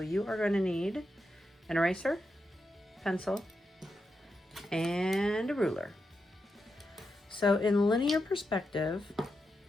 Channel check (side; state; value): both; normal; correlation 0.87